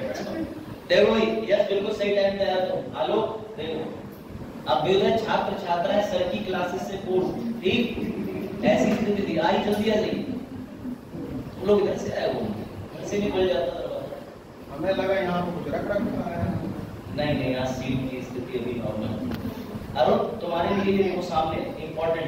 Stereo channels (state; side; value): identical; both; correlation 1.00